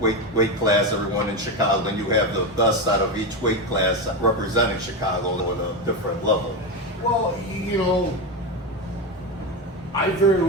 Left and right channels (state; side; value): normal; both; correlation 0.15